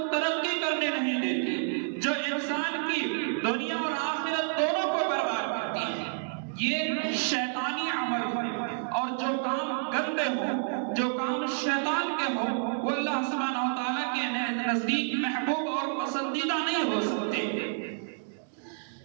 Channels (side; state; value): left; silent; digital silence